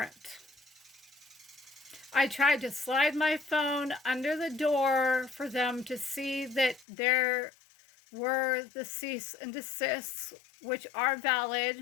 I tried to slide my phone under the door for them to see that there were the cease and desists, which are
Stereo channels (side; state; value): right; drops out; at 6.9 s